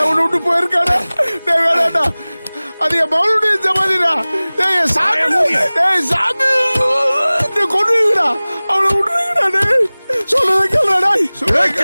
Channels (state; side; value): inverted; both; correlation -1.00